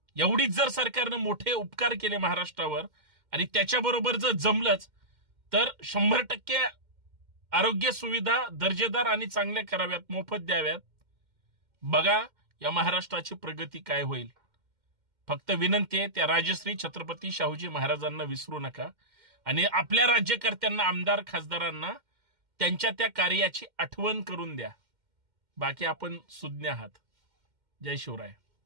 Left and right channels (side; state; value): left; late; 2.1 ms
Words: एवढीच जर सरकारनं मोठे उपकार केले महाराष्ट्रावर आणि त्याच्याबरोबर जर जमलंच तर 100% आरोग्य सुविधा दर्जेदार आणि चांगल्या कराव्यात, मोफत द्याव्यात. बघा या महाराष्ट्राची प्रगती काय होईल. फक्त विनंती आहे त्या राजश्री छत्रपती शाहूजी महाराजांना विसरू नका आणि आपल्या राज्यकर्त्यांना, आमदार खासदारांना त्यांच्या त्या कार्याची आठवण करून द्या. बाकी आपण सुज्ञ आहात. जय शिवराय.